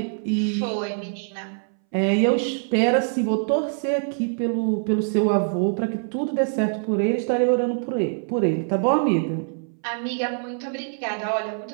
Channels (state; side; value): silent; left; 61 dB below the other